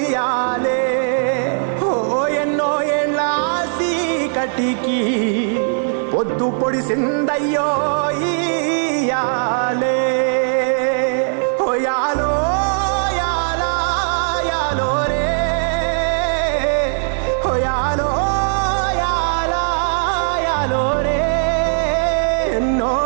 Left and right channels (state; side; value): silent; left; 59 dB below the other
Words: ఓ ఎన్నో ఏండ్ల కటికి పొద్దు పొడిసిందయ్యో ఇయాలే ఓ యాలో యాలా యాలో రే ఓ యాలో యాలా యాలో రే ఎన్నో